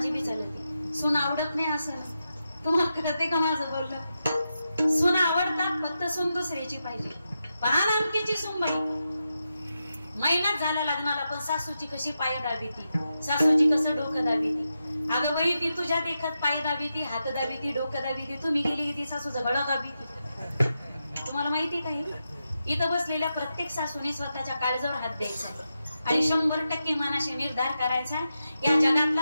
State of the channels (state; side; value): inverted; both; correlation -0.88